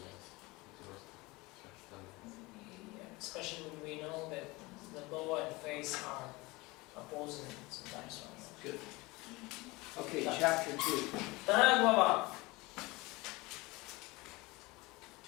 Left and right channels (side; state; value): right; quieter; 22.9 dB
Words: Especially when we know that the law and faith are opposing sometimes one another. Good. Okay, Да. chapter 2. Вторая глава.